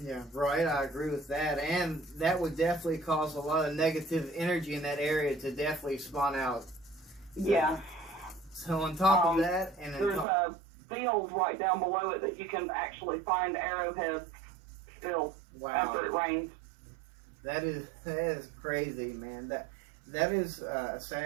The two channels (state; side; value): drops out; left; at 10.2 s